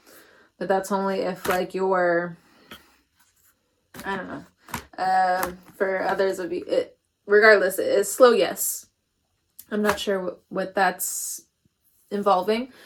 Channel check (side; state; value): both; identical; correlation 1.00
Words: But that's only if like you're, I don't know. For others of you, regardless, it's slow yes. I'm not sure what that's involving.